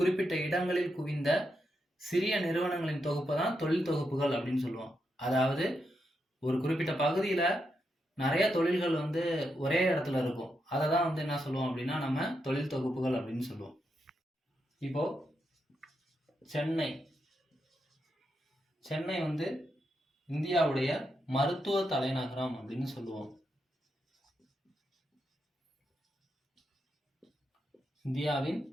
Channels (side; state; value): both; normal; correlation 0.83